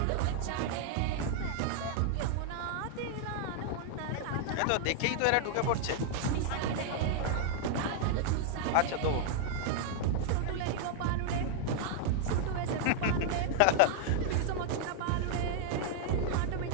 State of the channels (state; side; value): different; both; correlation -0.01